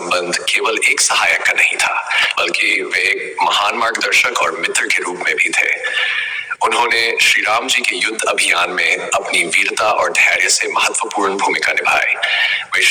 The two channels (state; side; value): identical; both; correlation 1.00